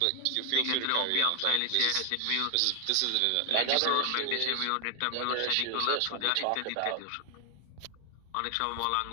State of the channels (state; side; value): different; both; correlation 0.01